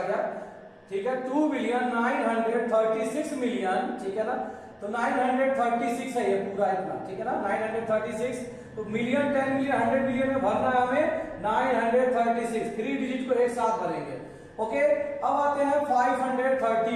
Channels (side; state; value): both; identical; correlation 1.00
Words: गया। ठीक है। 2 बिलियन 936 मिलियन। ठीक है ना। तो 936 है ये पूरा इतना। ठीक है ना। 936 तो मिलियन 10 मिलियन 100 मिलियन में भरना है हमें 936। 3 डिजिट को एक साथ भरेंगे। ओके। अब आते हैं